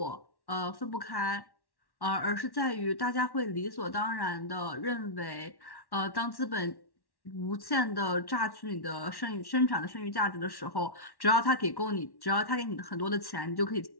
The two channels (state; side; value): late; right; 1.1 ms